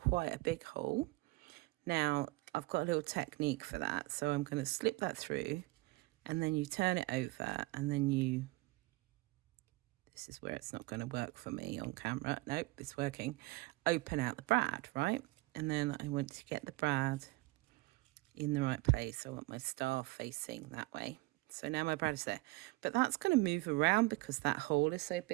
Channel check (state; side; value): quieter; left; 22.1 dB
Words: a big hole. Now, I've got a little technique for that. So I'm going to slip that through, and then you turn it over, and then this is where it's not going to work for me on camera. Nope, it's working. Open out the brad, right? And then I want to get the brad in the right place. I want my star facing that way. So now my brad is there. But that's going to move around because that hole is so